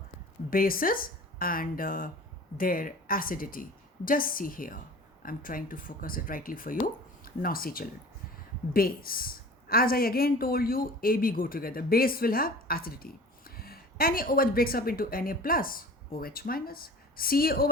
bases and their acidity. Just see here. I'm trying to focus it rightly for you. Now see, children. Base. As I again told you, AB go together. Base will have acidity. NaOH breaks up into Na plus, OH minus.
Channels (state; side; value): normal; both; correlation 0.42